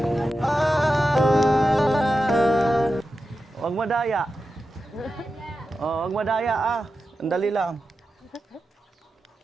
Huwag madaya. Oh, huwag madaya ah. Sandali lang.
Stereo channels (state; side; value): normal; both; correlation 0.91